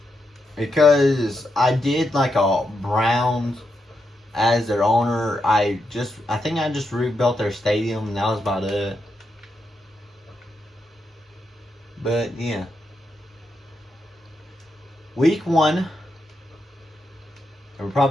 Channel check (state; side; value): normal; both; correlation 0.83